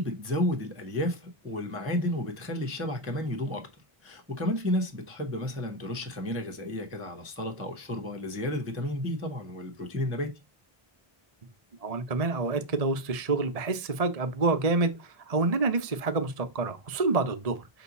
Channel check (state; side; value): late; left; 1.7 ms